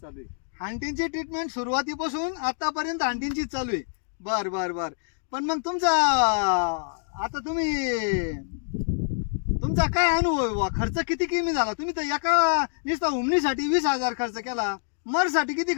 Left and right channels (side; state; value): right; silent; digital silence